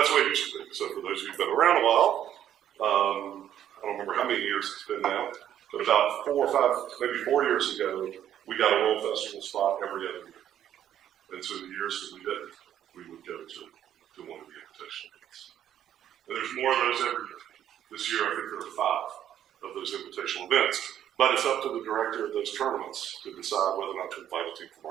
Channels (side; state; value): left; quieter; 10.6 dB